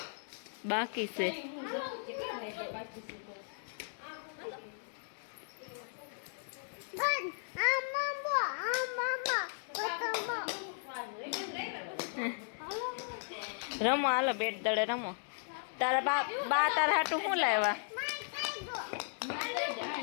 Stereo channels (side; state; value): right; silent; digital silence